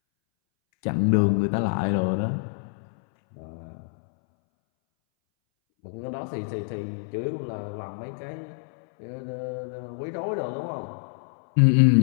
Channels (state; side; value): silent; right; 61 dB below the other